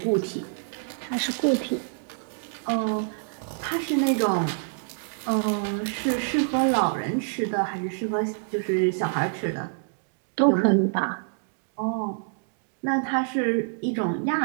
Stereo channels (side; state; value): left; silent; digital silence